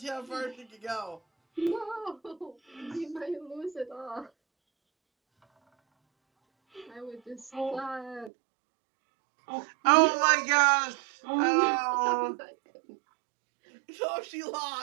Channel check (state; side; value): drops out; left; at 8.3 s